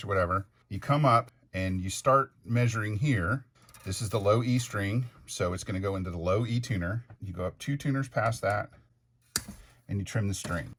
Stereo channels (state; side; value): identical; both; correlation 1.00